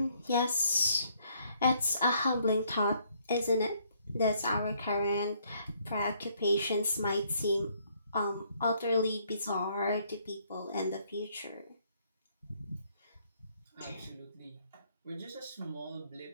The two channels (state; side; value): inverted; both; correlation -0.68